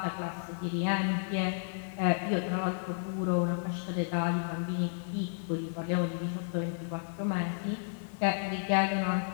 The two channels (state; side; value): silent; right; digital silence